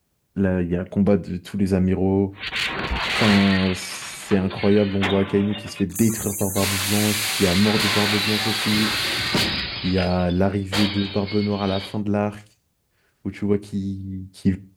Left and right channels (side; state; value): both; identical; correlation 1.00